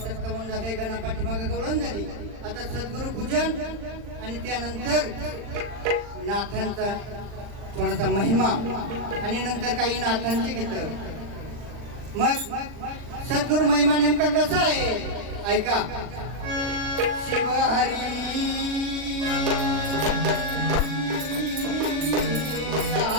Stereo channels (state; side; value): late; left; 39 ms